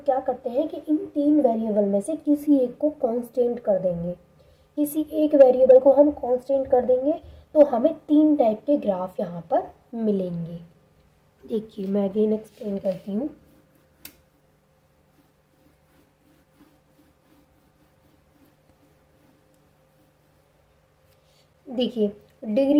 करते हैं कि इन तीन वेरिएबल में से किसी एक को कांस्टेंट कर देंगे, किसी एक वेरिएबल को हम कांस्टेंट कर देंगे तो हमें तीन टाइप के ग्राफ यहाँ पर मिलेंगे। देखिए मैं अगेन एक्सप्लेन करती हूँ। देखिए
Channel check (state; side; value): identical; both; correlation 1.00